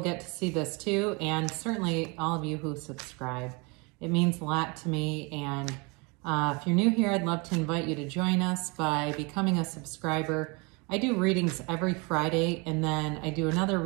to see this too, and certainly all of you who subscribe. It means a lot to me, and if you're new here, I'd love to invite you to join us by becoming a subscriber. I do readings every Friday, and then I do another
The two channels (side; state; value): left; quieter; 29.4 dB